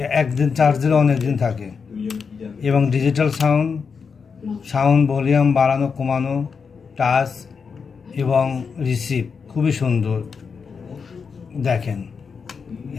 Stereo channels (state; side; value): quieter; right; 5.7 dB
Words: একদিন চার্জ দিলে অনেক দিন থাকে। এবং ডিজিটাল সাউন্ড ভলিউম বাড়ানো কমানো, টাচ এবং রিসিভ খুবই সুন্দর। দেখেন,